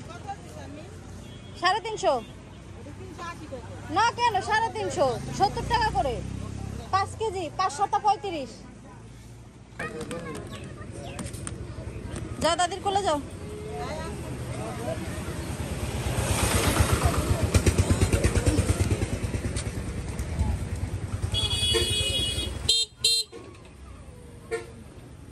350 না কেন 350, 70 টাকা করে 5 কেজি, 5 7 35। যাও দাদির কোলে যাও।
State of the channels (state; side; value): identical; both; correlation 1.00